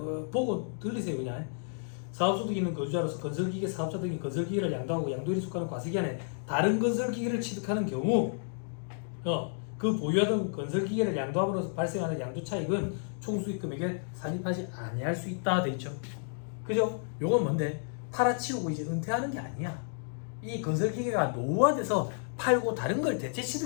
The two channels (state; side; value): silent; right; digital silence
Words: 보고 들리세요. 그냥 사업소득 있는 거주자로서 건설기계 사업자 등이 건설기계를 양도하고 양도일에 속하는 과세기간에 다른 건설기계를 취득하는 경우 그 보유하던 건설기계를 양도함으로써 발생하는 양도차익은 총수익금액에 산입하지 아니할 수 있다 돼 있죠. 그죠? 요건 뭔데? 팔아치우고 이제 은퇴하는 게 아니야. 이 건설기계가 노후화돼서 팔고 다른 걸 대체